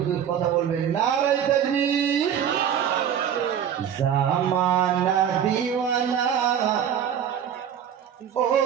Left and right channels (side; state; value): left; quieter; 8.8 dB